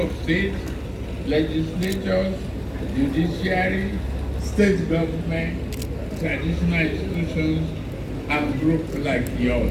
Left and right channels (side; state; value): both; identical; correlation 1.00